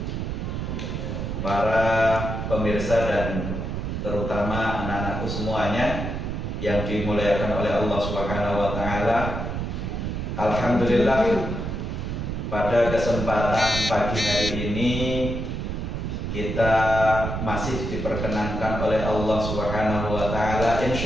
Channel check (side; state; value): right; noise; rumble, 3 dB below the sound